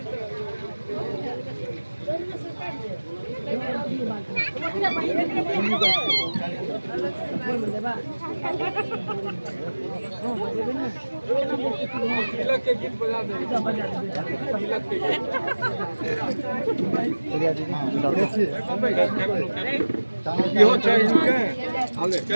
तिलक के गीत बजा दे। तिलक के गीत यो चाहिए के आले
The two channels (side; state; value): both; inverted; correlation -1.00